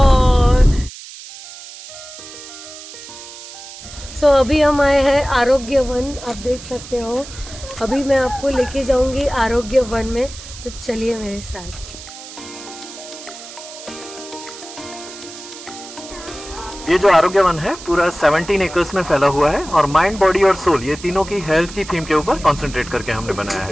अभी हम आए हैं आरोग्य वन। आप देख सकते हो, अभी मैं आपको लेके जाऊंगी आरोग्य वन में, तो चलिए मेरे साथ। ये जो आरोग्य वन है पूरा 17 एकर्स में फैला हुआ है, और माइंड, बॉडी और सोल, ये तीनों की हेल्थ की थीम के ऊपर कंसंट्रेट करके हमने बनाया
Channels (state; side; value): noise; right; hiss, 14 dB below the sound